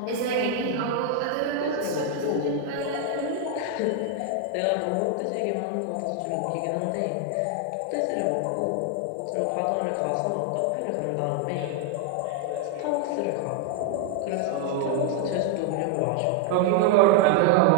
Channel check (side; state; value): both; different; correlation 0.00